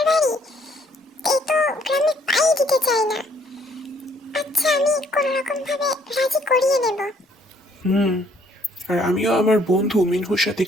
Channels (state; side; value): normal; both; correlation 0.64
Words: বাড়ি, এই তো গ্রামে পাই দিতে চাই না। আচ্ছা, আমি কোনো রকম ভাবে রাজি করিয়ে নেব। আর আমিও আমার বন্ধু মিনহুর সাথে